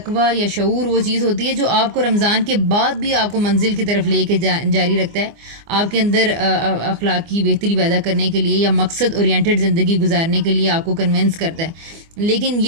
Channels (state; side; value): late; left; 24 ms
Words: یا شعور وہ چیز ہوتی ہے جو آپ کو رمضان کے بعد بھی آپ کو منزل کی طرف لے کے جاری رکھتا ہے, آپ کے اندر اخلاقی بہتری پیدا کرنے کے لیے یا مقصد اورینٹڈ زندگی گزارنے کے لیے آپ کو کنونس کرتا ہے. لیکن